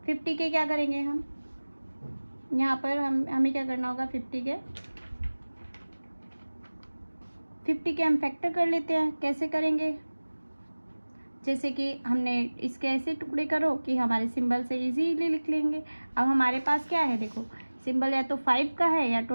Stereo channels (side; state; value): both; inverted; correlation -1.00